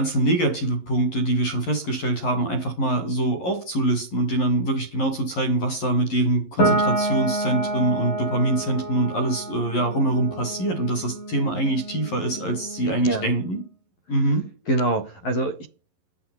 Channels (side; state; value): right; late; 11 ms